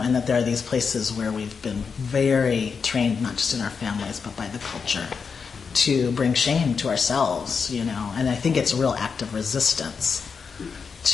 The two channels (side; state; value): right; quieter; 5.7 dB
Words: that there are these places where we've been very trained, not just in our families, but by the culture, to bring shame to ourselves, And I think it's a real act of resistance